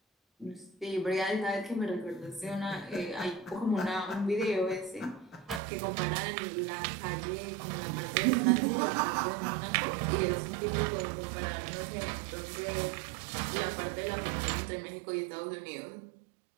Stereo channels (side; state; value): left; drops out; at 5.6 s